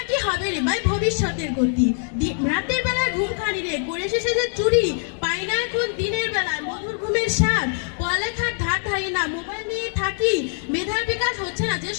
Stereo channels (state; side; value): silent; right; 55 dB below the other